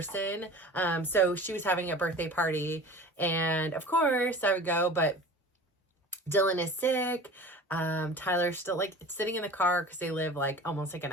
So she was having a birthday party, and of course I would go, but Dylan is sick. Tyler's still sitting in the car because they live almost an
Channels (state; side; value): normal; both; correlation 0.40